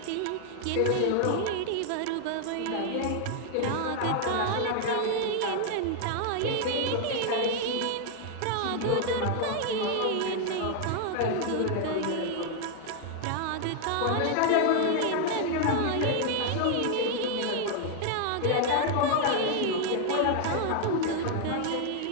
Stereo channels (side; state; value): both; different; correlation 0.00